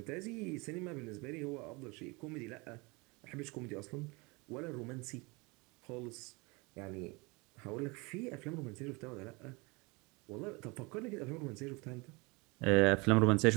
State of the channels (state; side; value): quieter; left; 26.9 dB